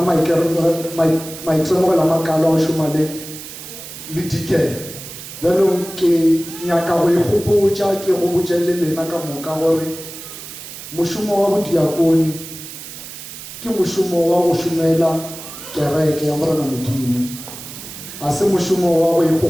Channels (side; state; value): right; noise; hiss, 12 dB below the sound